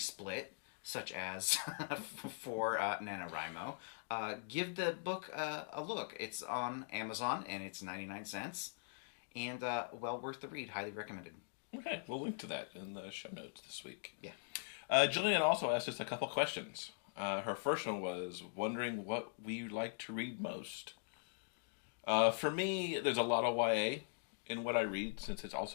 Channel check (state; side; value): silent; right; digital silence